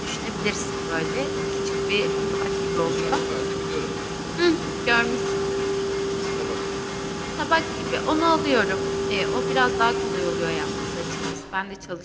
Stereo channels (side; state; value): both; identical; correlation 1.00